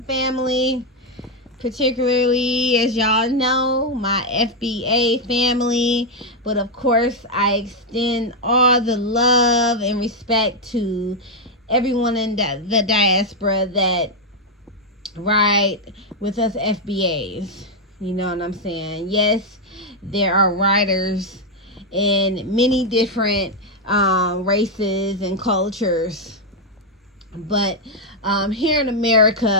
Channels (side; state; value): both; normal; correlation 0.01